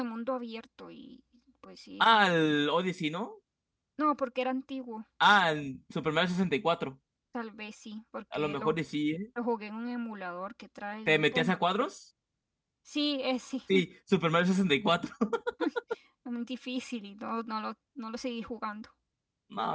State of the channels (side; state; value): both; identical; correlation 1.00